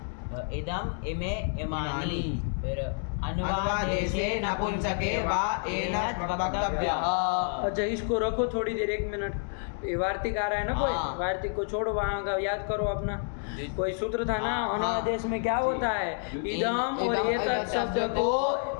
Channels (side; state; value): right; silent; 59 dB below the other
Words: इदम इमे इमानी। फिर अनुवादेशे नपुंसके वा एनत् वक्तव्यः। अच्छा इसको रखो थोड़ी देर, 1 मिनट। ये वार्तिक आ रहा है ना कोई? हाँ। वार्तिक को छोड़ो, वहाँ का याद करो अपना। जी। कोई सूत्र था ना हाँ। अनुवादेश में, क्या होता है? इदम और इदम एतत् शब्द को